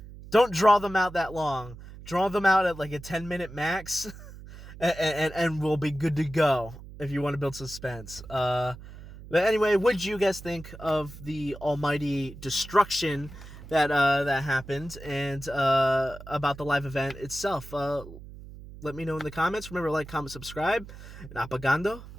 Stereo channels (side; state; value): right; noise; hum, 15 dB below the sound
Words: don't draw them out that long. Draw them out at like a 10-minute max, and we'll be good to go if you want to build suspense. But anyway, what did you guys think of the almighty destruction that happened, and about the live event itself? Let me know in the comments. Remember to like, comment, subscribe, and apagando